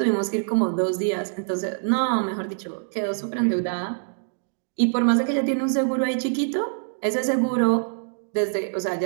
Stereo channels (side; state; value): left; silent; digital silence